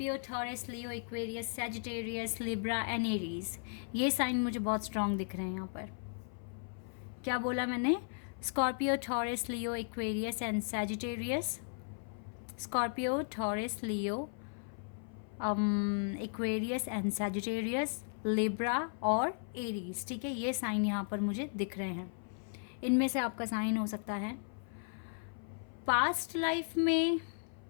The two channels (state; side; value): silent; right; 54 dB below the other